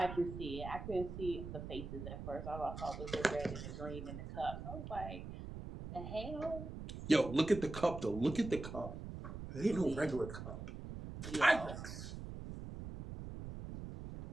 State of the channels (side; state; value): right; noise; rumble, 8 dB below the sound